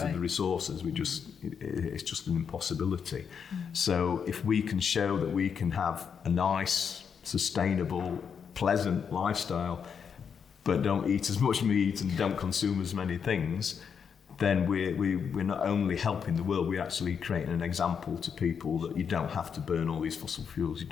of the resources. It's just an impossibility. So if we can show that we can have a nice, sustainable, pleasant lifestyle, but don't eat as much meat and don't consume as many things, then we're not only helping the world, we're actually creating an example to people that you don't have to burn all these fossil fuels, you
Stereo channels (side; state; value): right; quieter; 6.9 dB